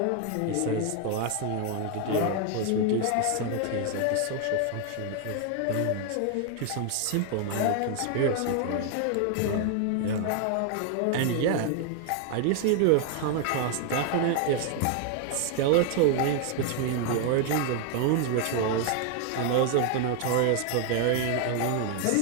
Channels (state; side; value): different; both; correlation 0.00